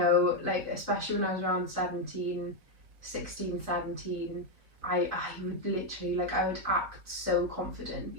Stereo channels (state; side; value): late; left; 4.5 ms